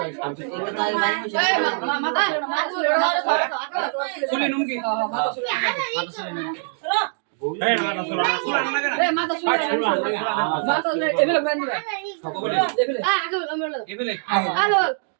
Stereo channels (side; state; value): left; silent; digital silence